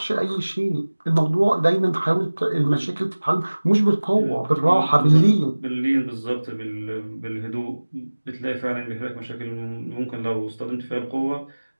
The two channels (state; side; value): inverted; both; correlation -1.00